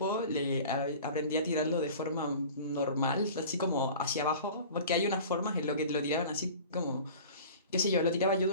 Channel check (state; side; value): inverted; both; correlation -0.40